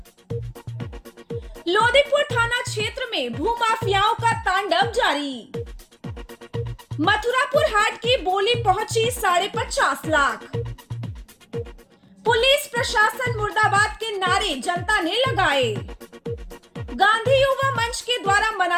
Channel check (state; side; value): identical; both; correlation 1.00